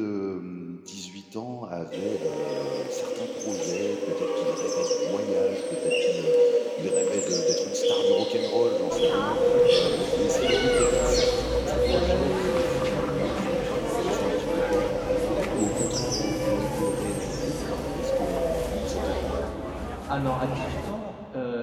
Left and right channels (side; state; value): both; identical; correlation 1.00